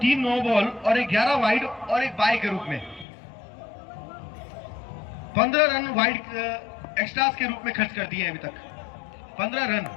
नो बॉल और 11 वाइड और 1 बाई के रूप में 15 रन वाइड एक्स्ट्रास के रूप में खर्च कर दिए अभी तक। 15 रन,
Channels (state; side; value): drops out; right; at 3.1 s